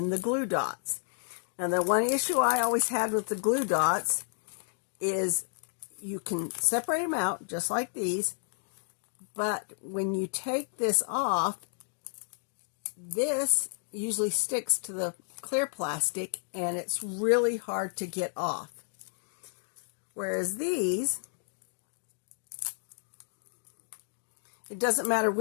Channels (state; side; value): silent; right; 57 dB below the other